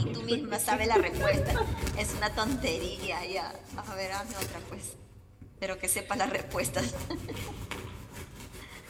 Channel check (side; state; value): both; identical; correlation 1.00